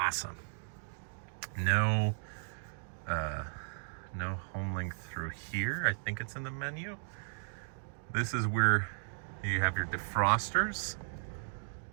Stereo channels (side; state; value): left; silent; digital silence